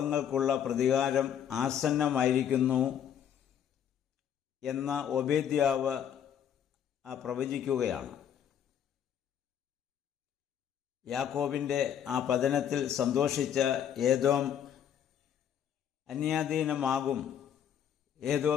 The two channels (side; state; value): right; quieter; 9.2 dB